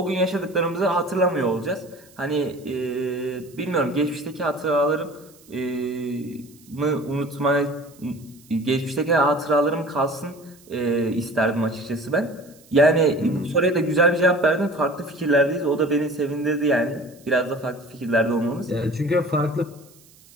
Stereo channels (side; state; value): right; noise; hiss, 27 dB below the sound